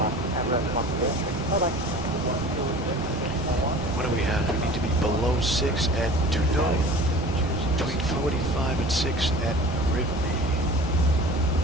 what do we have? We need to be below 6 at Tudo, between 45 and 6 at Arrhythmia.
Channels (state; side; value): normal; both; correlation 0.41